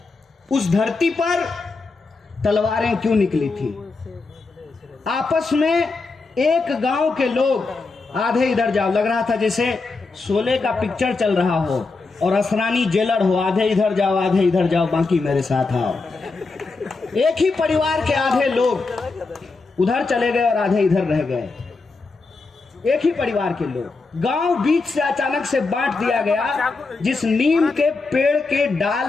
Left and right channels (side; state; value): right; quieter; 3.9 dB